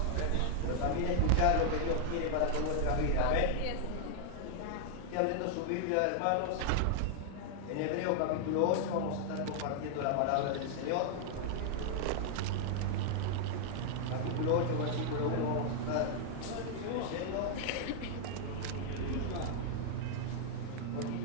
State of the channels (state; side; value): different; both; correlation -0.01